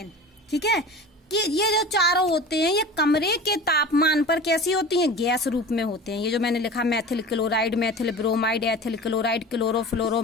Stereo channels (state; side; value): normal; both; correlation 0.36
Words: ठीक है कि ये जो चारों होते हैं ये कमरे के तापमान पर कैसी होती हैं? गैस रूप में होते हैं। ये जो मैंने लिखा methyl chloride, methyl bromide, ethyl chloride,